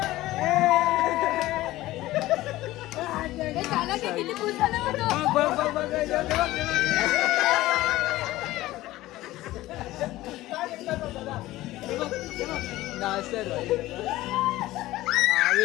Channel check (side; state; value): right; quieter; 16.8 dB